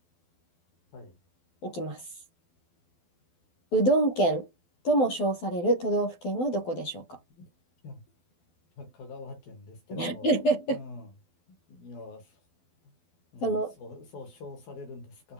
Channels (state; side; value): late; right; 12 ms